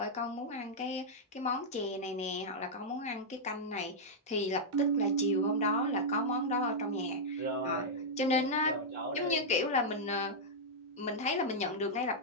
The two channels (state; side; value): normal; both; correlation -0.06